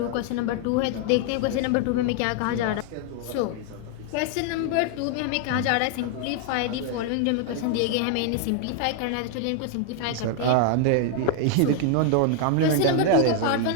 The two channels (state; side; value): different; both; correlation 0.00